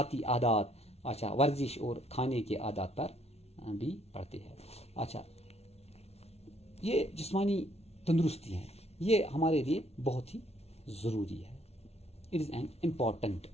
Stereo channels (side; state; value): right; late; 0.31 ms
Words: عادات، اچھا، ورزش اور کھانے کے عادات پر بھی پڑتے ہیں. اچھا، یہ جسمانی تندرستی ہے، یہ ہمارے لیے بہت ہی ضروری ہے. It is an important